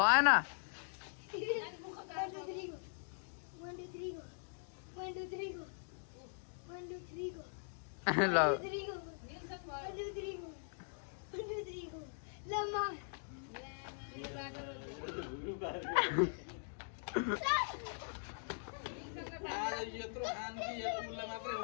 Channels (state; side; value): silent; right; digital silence